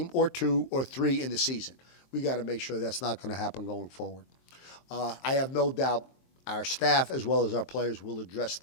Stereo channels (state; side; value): late; right; 23 ms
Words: or 2 or 3 in the season. We got to make sure that's not going to happen going forward. I have no doubt our staff as well as our players will address